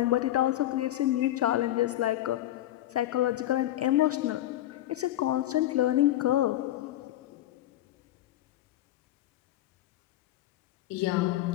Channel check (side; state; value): right; quieter; 14.1 dB